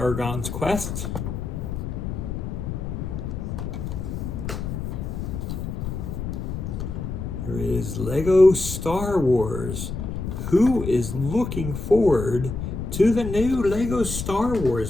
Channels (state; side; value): noise; left; rumble, 5 dB below the sound